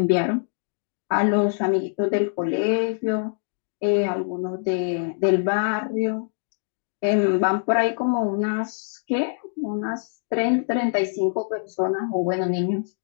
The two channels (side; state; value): right; silent; digital silence